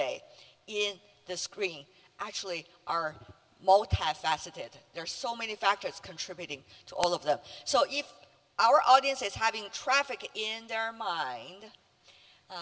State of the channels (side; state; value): both; identical; correlation 1.00